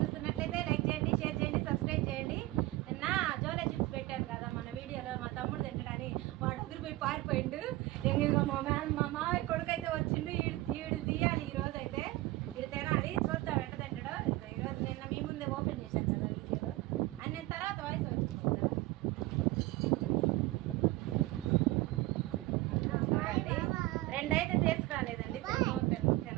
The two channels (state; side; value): quieter; left; 18.7 dB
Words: చూస్తున్నట్లయితే like చేయండి, షేర్ చేయండి, సబ్స్క్రైబ్ చేయండి. నిన్న జోలే చిప్స్ పెట్టాను కదా మన వీడియోలో, మా తమ్ముడు తింటాడని వాడు ఎదురుపోయి పారిపోయిండు. ఇంకా మా మామయ్య కొడుకు అయితే వచ్చిండు, ఈడు తీయాలి ఈరోజు అయితే, ఇది తినాలి. చూద్దాం ఎట్ట తింటాడో. ఈరోజు నిన్న మీ ముందే ఓపెన్ చేశాను కదా వీడియోలో, అన్ని తర్వాత వాయిస్ వచ్చింది. రెండైతే తీసుకురాలేదండి,